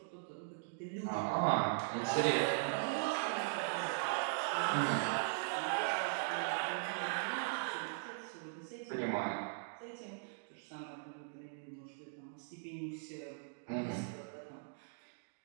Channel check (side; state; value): left; silent; digital silence